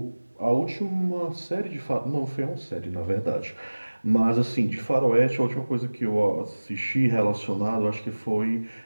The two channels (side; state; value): both; inverted; correlation -1.00